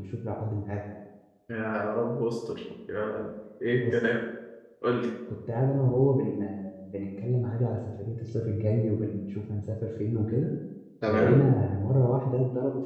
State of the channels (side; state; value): both; identical; correlation 1.00